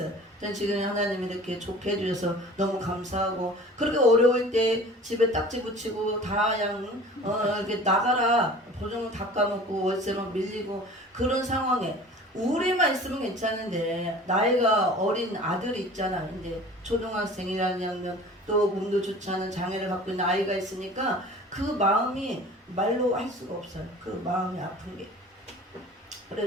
전 지금 하나님이 이렇게 좋게 해주셔서 너무 감사하고, 그렇게 어려울 때 집에 딱지 붙이고 다 그냥 이렇게 나가라 보증금 다 까먹고 월세만 밀리고 그런 상황에 우리만 있으면 괜찮은데, 나이가 어린 아들이 있잖아. 이제 초등학생이라면 또 몸도 좋지 않은 장애를 갖고 있는 아이가 있으니까 그 마음이 말로 할 수가 없어요. 그 마음이 아픈 게.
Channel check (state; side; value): normal; both; correlation 0.43